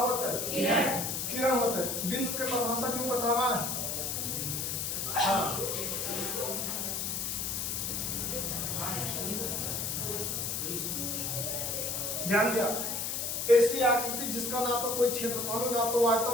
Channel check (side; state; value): left; noise; hiss, 1 dB below the sound